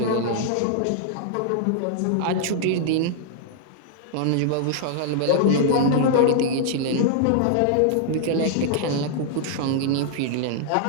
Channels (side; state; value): both; different; correlation -0.01